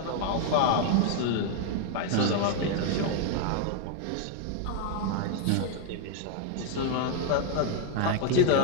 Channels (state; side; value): different; both; correlation 0.00